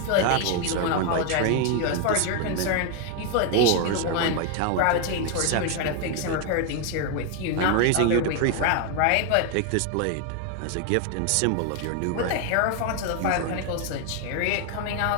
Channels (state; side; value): different; both; correlation 0.01